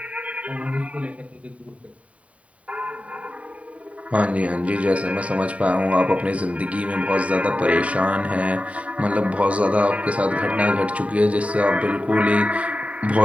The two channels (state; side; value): late; left; 0.066 ms